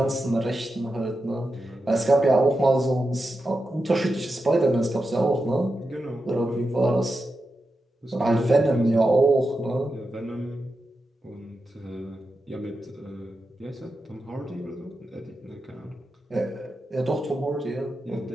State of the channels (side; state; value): both; normal; correlation 0.89